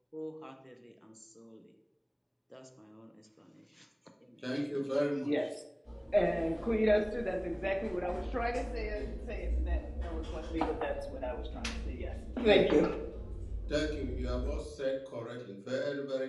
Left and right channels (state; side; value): identical; both; correlation 1.00